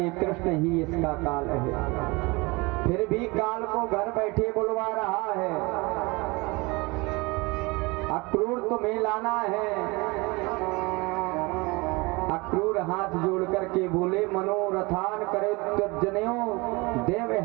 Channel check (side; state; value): left; quieter; 25.4 dB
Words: कृष्ण ही इसका काल है। फिर भी काल को घर बैठे बुलवा रहा है। अक्रूर तुम्हें लाना है। अक्रूर हाथ जोड़ करके बोले, मनोरथान करे तज्जनयो देव